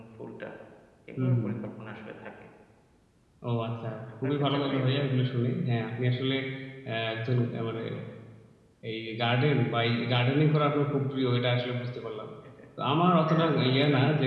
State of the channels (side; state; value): both; identical; correlation 1.00